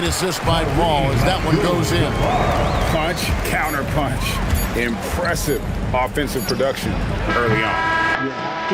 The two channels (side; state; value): both; identical; correlation 1.00